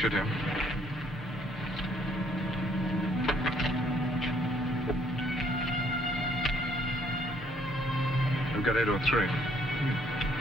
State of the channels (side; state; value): both; normal; correlation 0.65